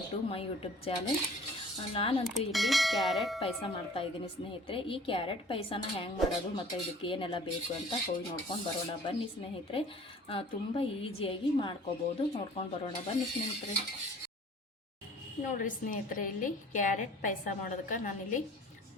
to my YouTube channel. ನಾನಂತೂ ಇಲ್ಲಿ ಕ್ಯಾರೆಟ್ ಪಾಯಸ ಮಾಡ್ತಾಯಿದ್ದೀನಿ ಸ್ನೇಹಿತರೆ. ಈ ಕ್ಯಾರೆಟ್ ಪಾಯಸನ ಹ್ಯಾಂಗೆ ಮಾಡೋದು ಮತ್ತು ಇದಕ್ಕೆ ಏನೆಲ್ಲ ಬೇಕು ಅಂತ ಹೋಗಿ ನೋಡ್ಕೊಂಡು ಬರೋಣ ಬನ್ನಿ ಸ್ನೇಹಿತರೆ. ತುಂಬ ಈಸಿಯಾಗಿ ಮಾಡ್ಕೋಬೋದು. ನೋಡ್ಕೊಂಡು ಬರೋಣ ಬನ್ನಿ ಸ್ನೇಹಿತರೆ. ನೋಡಿರಿ ಸ್ನೇಹಿತರೆ, ಇಲ್ಲಿ ಕ್ಯಾರೆಟ್ ಪಾಯಸ ಮಾಡೋದಕ್ಕೆ ನಾನಿಲ್ಲಿ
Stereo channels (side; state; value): both; normal; correlation 0.50